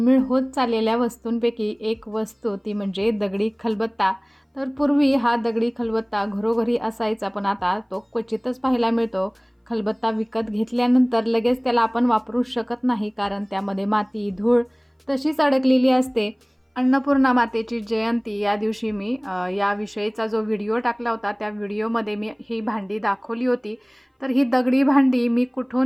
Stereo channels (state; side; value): identical; both; correlation 1.00